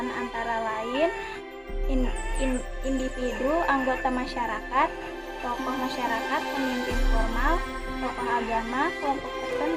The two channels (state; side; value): identical; both; correlation 1.00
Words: antara lain individu, anggota masyarakat, tokoh masyarakat, pemimpin formal, tokoh agama, kelompok